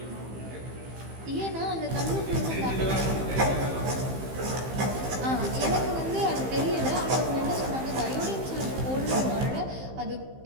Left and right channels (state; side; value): late; left; 15 ms